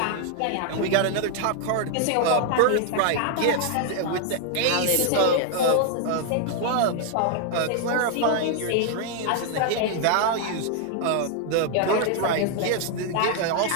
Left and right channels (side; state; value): both; different; correlation 0.00